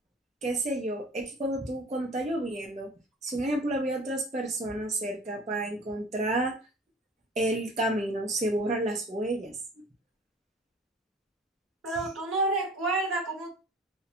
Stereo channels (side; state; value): both; normal; correlation 0.45